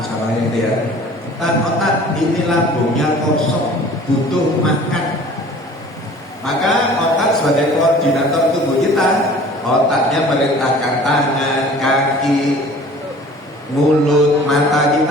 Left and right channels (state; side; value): normal; both; correlation 0.47